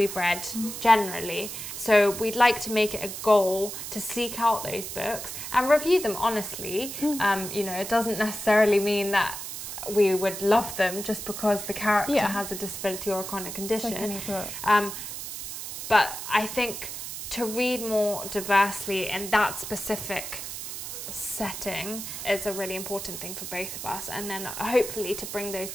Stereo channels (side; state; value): right; noise; hiss, 8 dB below the sound